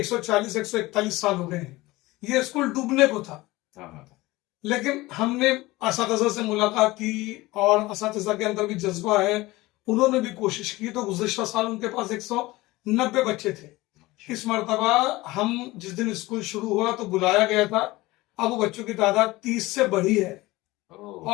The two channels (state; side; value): quieter; right; 19.8 dB